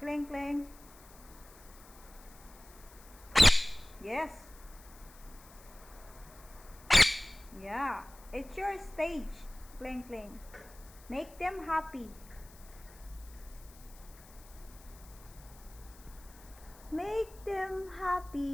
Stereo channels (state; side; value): noise; left; hiss, 22 dB below the sound